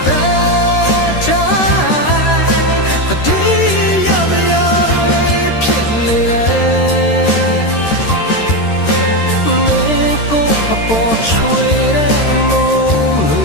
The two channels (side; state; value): right; late; 13 ms